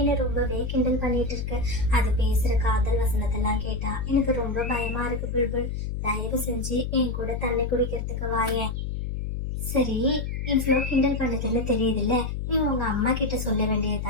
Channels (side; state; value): left; noise; hum, 3 dB below the sound